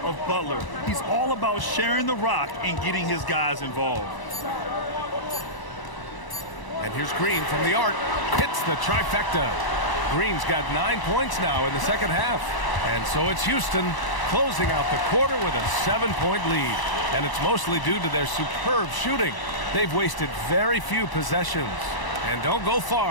Butler. He's all about sharing the rock and getting his guys involved. And here's Green from the arc. Hits the trifecta. Green's got 9 points now in the second half. And so it's Houston closing out the quarter with a 7-point lead. And it's mostly due to their superb shooting. They've wasted very few possessions. And don't go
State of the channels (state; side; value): late; right; 1.0 ms